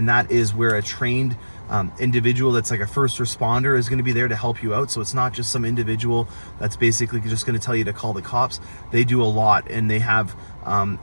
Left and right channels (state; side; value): inverted; both; correlation -1.00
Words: that is where a trained individual that's like a first responder is going to be there to help you out. So it's not just some individual that's basically just going to tell you to call the cops. They do a lot, and they have